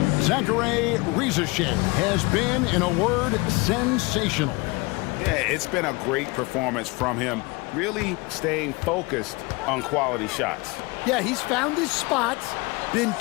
Zachary Rizashay has been, in a word, sensational. Yeah, it's been a great performance from him, really staying focused on quality shots. Yeah, he's found his spots, been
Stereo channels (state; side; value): quieter; right; 25.6 dB